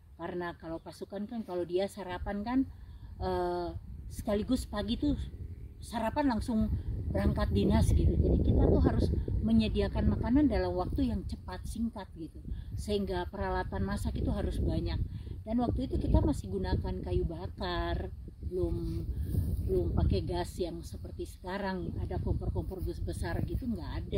Karena kalau pasukan kan kalau dia sarapan kan sekaligus pagi tuh sarapan langsung berangkat dinas gitu. Jadi kita tuh harus menyediakan makanan dalam waktu yang cepat, singkat gitu, sehingga peralatan masak itu harus banyak. Dan waktu itu kita masih gunakan kayu bakar, belum pakai gas yang seperti sekarang ada kompor-kompor besar gitu, nggak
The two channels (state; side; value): identical; both; correlation 1.00